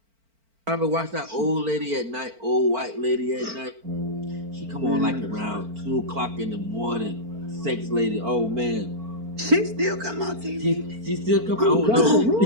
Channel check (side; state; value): left; late; 4.4 ms